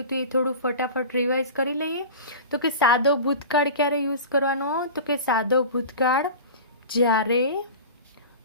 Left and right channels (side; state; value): both; inverted; correlation -0.34